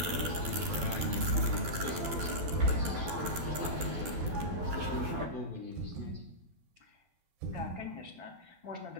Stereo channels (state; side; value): late; left; 12 ms